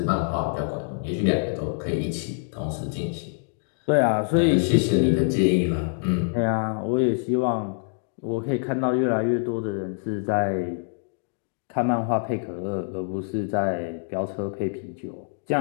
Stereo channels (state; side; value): silent; right; digital silence